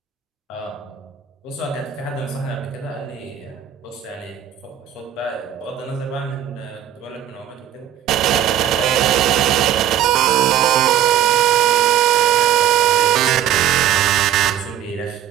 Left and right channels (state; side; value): quieter; left; 10.7 dB